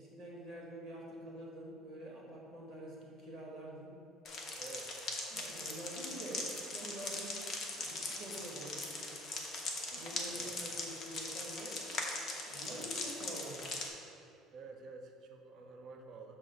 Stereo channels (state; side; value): normal; both; correlation 0.53